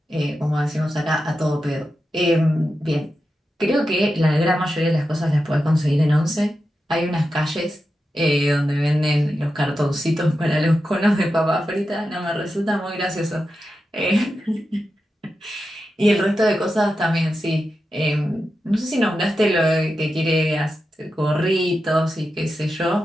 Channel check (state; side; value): normal; both; correlation 0.90